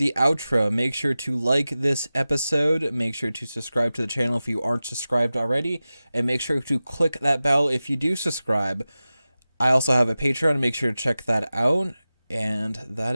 outro. Make sure to like this episode. Make sure to subscribe to the channel if you aren't subscribed already. And make sure to click that bell if you do subscribe. I also have a Patreon. Make sure to check that out. And that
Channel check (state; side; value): inverted; both; correlation -0.95